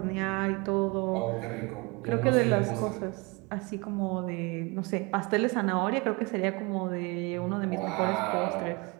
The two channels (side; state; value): left; quieter; 27.5 dB